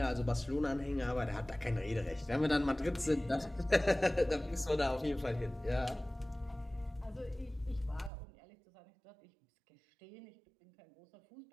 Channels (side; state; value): left; drops out; at 8.1 s